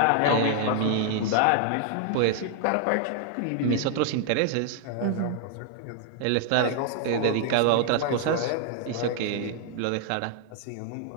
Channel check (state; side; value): different; both; correlation 0.00